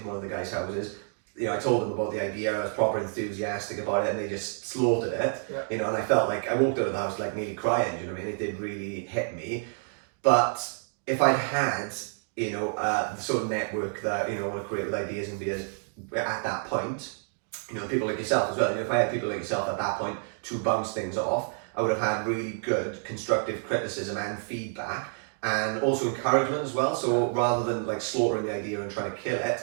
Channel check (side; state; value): left; silent; 56 dB below the other